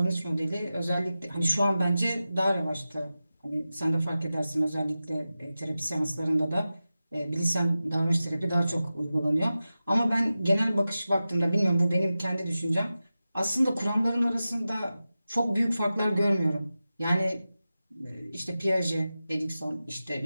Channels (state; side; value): inverted; both; correlation -0.94